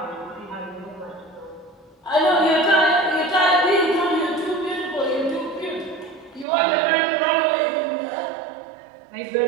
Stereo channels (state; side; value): drops out; left; at 6.5 s